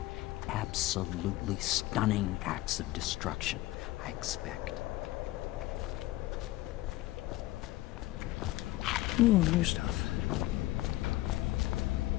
absolutely stunning acts of destruction, I expect. Ooh, new stuff.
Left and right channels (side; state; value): right; quieter; 17.4 dB